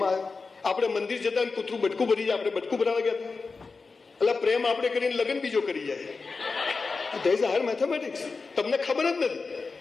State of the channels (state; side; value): quieter; right; 4.3 dB